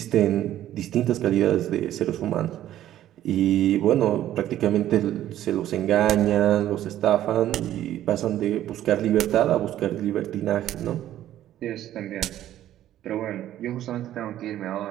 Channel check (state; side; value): quieter; left; 12.6 dB